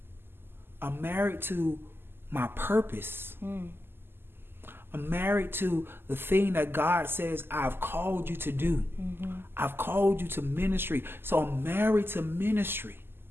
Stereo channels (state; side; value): late; left; 0.11 ms